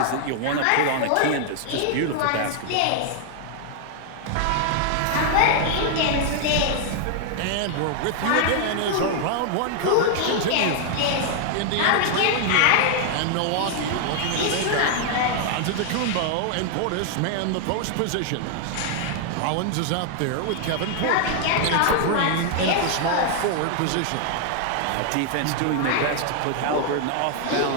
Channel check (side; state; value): both; different; correlation 0.00